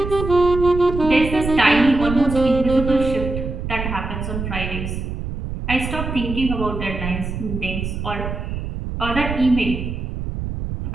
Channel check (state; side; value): noise; right; rumble, 5 dB below the sound